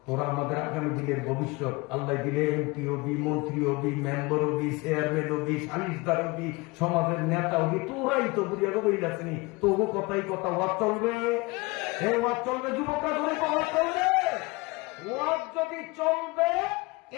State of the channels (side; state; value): right; quieter; 24.7 dB